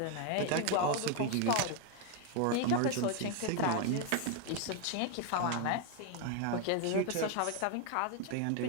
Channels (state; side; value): different; both; correlation 0.01